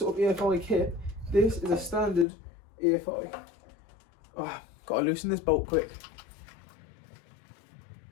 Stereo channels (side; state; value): right; drops out; at 2.2 s